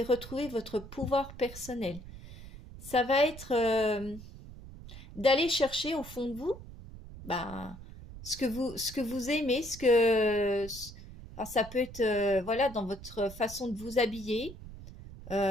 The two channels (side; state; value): right; noise; rumble, 15 dB below the sound